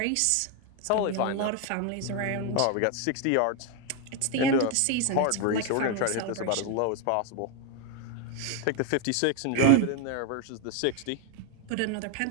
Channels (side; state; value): both; different; correlation 0.01